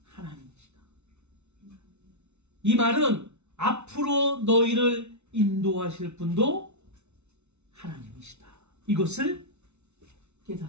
하나님이시다. 이 말은 앞으로 너희를 인도하실 분도 하나님이시다. 이것을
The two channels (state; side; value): late; left; 0.81 ms